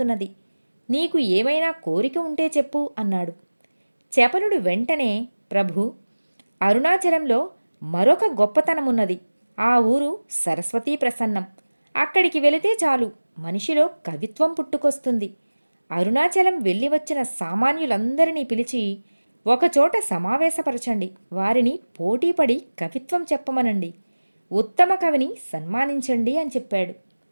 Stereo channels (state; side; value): inverted; both; correlation -1.00